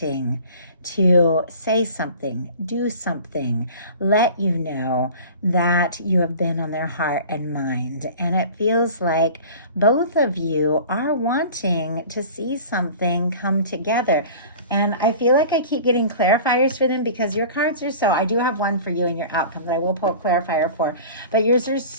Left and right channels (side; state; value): both; inverted; correlation -0.41